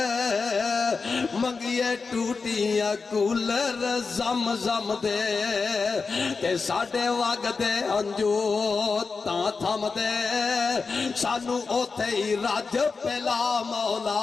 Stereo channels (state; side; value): quieter; right; 4.6 dB